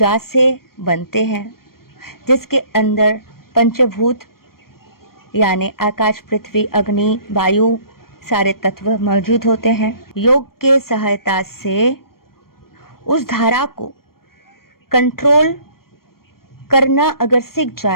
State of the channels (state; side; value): late; right; 0.93 ms